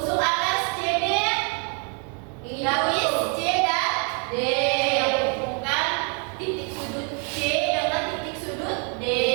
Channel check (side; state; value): left; quieter; 38.6 dB